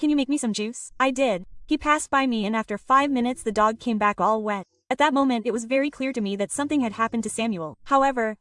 you make me some juice?" I did. He passed by me and after 5 minutes the dog came back all wet. At that moment it was very clear to me that something had happened to Samuel. However,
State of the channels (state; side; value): identical; both; correlation 1.00